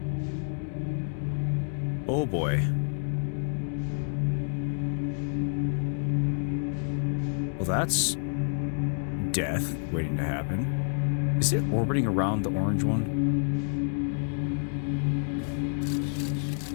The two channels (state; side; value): silent; right; digital silence